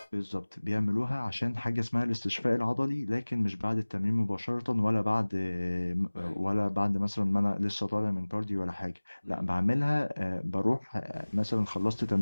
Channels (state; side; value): inverted; both; correlation -1.00